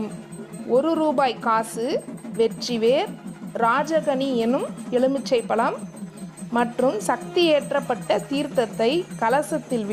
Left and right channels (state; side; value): identical; both; correlation 1.00